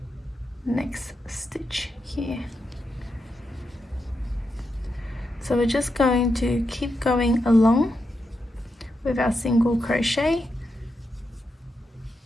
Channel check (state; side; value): normal; both; correlation 0.85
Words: next stitch here. So we're just going to keep going along with our single crochet